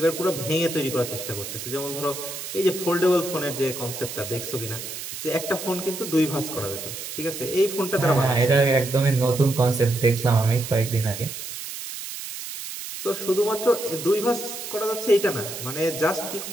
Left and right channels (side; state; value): right; noise; hiss, 8 dB below the sound